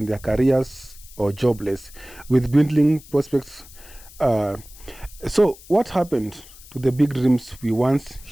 their careers, or jobless, with dwindling prospects. So what happened to the big dreams we once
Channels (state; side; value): noise; left; hiss, 21 dB below the sound